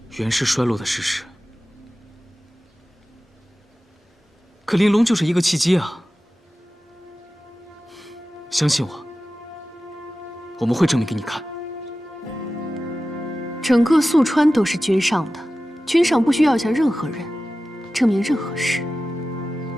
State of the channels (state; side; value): normal; both; correlation 0.95